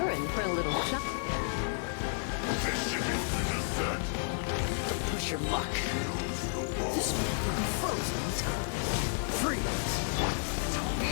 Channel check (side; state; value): right; silent; digital silence